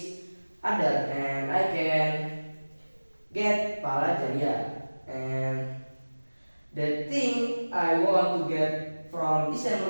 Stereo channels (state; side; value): inverted; both; correlation -1.00